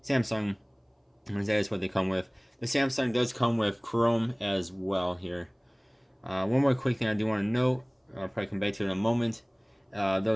Samsung. And that is what they come with. The Samsung does come with Chrome as well here. One more quick thing I do want to note, I'll probably come back to it in a moment.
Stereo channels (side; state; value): both; identical; correlation 1.00